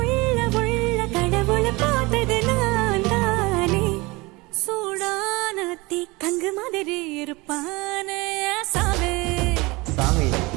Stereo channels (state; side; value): quieter; left; 23.7 dB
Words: உள்ள கடவுளை பார்த்தது நான் தானே சூடான தீ கங்கு மாதிரி இருப்பானே சாவே சாமி.